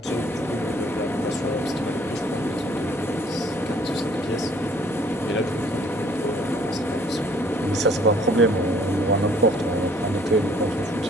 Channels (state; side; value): normal; both; correlation 0.59